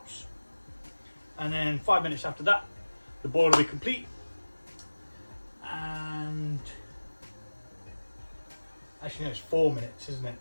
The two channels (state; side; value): inverted; both; correlation -1.00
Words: and then 5 minutes after that the boil will be complete. And actually no, it's 4 minutes, isn't it?